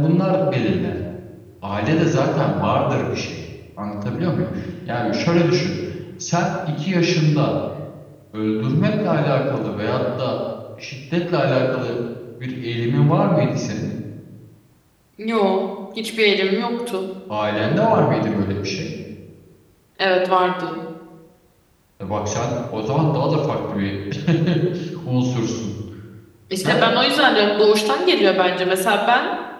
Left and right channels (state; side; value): identical; both; correlation 1.00